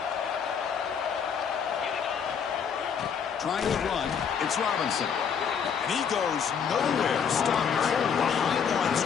Trying to run, it's Robinson. And he goes nowhere. Stopped cold behind the line of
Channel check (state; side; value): quieter; right; 7.1 dB